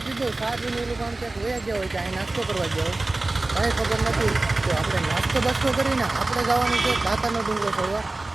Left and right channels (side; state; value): left; quieter; 3.0 dB